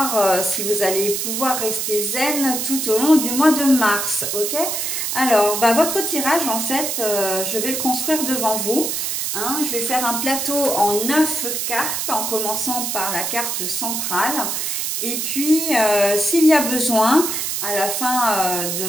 si vous allez pouvoir rester zen tout au long du mois de mars, ok? Alors, votre tirage, en fait, je vais le construire devant vous. Hein, je vais faire un plateau en 9 cartes, en commençant par la carte centrale. Et puis, s'il y a besoin, à la fin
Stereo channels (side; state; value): right; noise; hiss, 1 dB below the sound